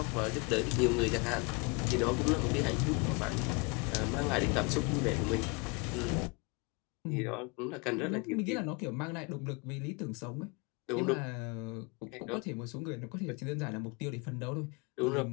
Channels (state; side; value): quieter; right; 30.3 dB